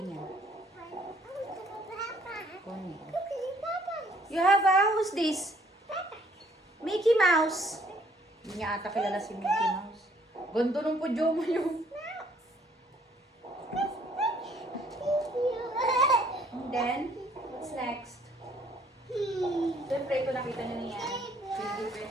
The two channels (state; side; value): normal; both; correlation 0.62